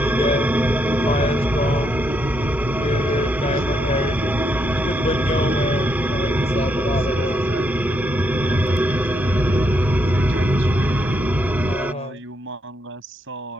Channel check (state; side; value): normal; both; correlation 0.78